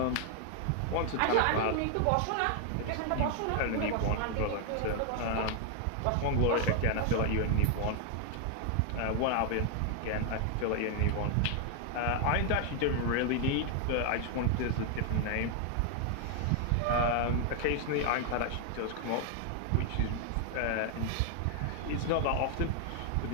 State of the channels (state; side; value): different; both; correlation 0.00